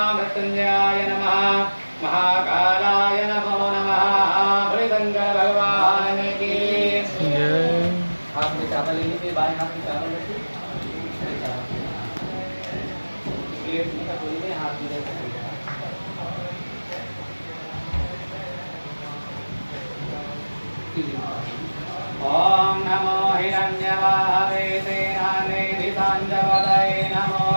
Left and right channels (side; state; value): both; inverted; correlation -1.00